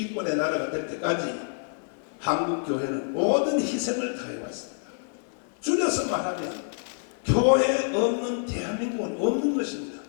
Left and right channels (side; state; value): right; silent; 60 dB below the other